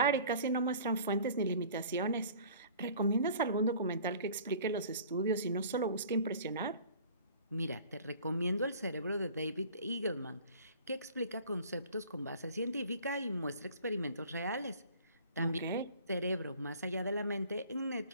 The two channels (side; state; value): both; inverted; correlation -0.48